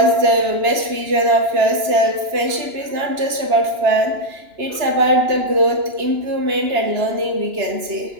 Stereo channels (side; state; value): left; late; 2.9 ms